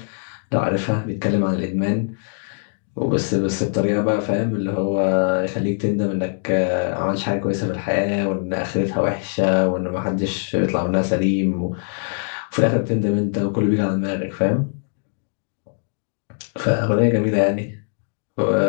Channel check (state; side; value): silent; right; 64 dB below the other